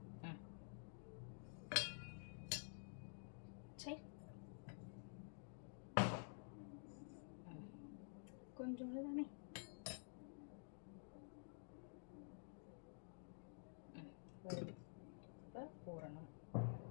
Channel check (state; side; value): silent; right; digital silence